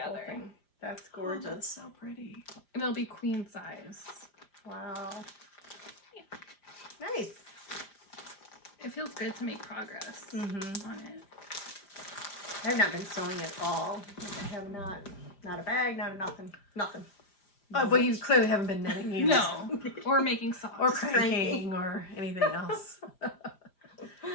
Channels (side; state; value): right; late; 5.0 ms